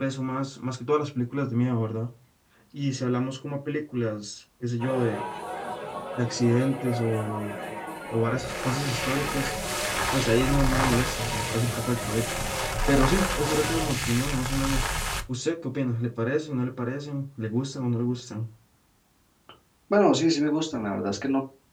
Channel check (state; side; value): identical; both; correlation 1.00